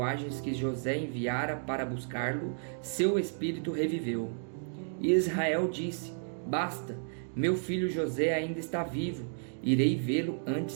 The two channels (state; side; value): silent; left; digital silence